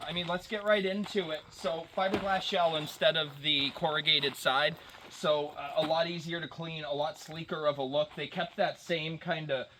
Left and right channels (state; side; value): identical; both; correlation 1.00